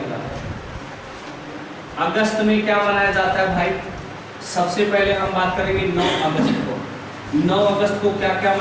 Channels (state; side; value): identical; both; correlation 1.00